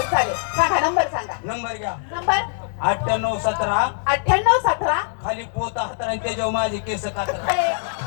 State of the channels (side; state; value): right; silent; 64 dB below the other